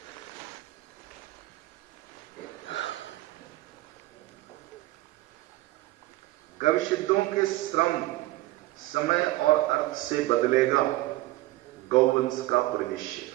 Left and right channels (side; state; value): left; quieter; 18.0 dB